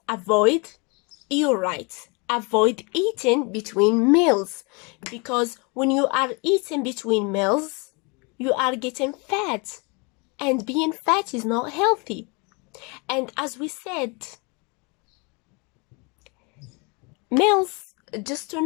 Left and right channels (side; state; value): right; quieter; 30.7 dB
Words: avoid, you're right, avoid eating between meals, because when you are eating between meals, you are getting fat, and being fat is not healthy. And as we said, meals, just to